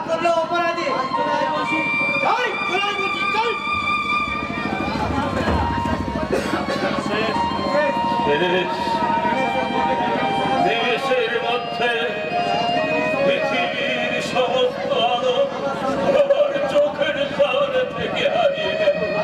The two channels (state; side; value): identical; both; correlation 1.00